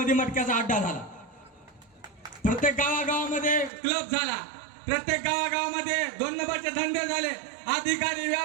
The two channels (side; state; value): left; drops out; at 3.7 s